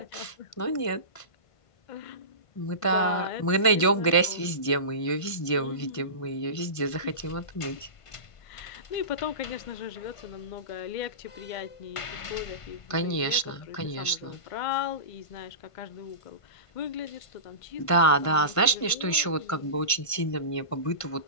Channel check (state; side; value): late; right; 1.5 ms